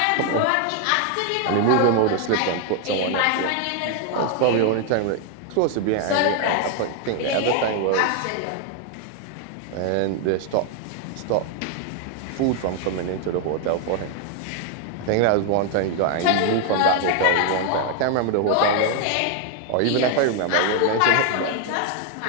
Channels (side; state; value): both; different; correlation 0.00